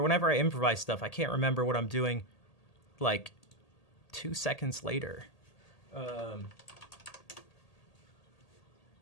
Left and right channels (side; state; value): right; late; 1.8 ms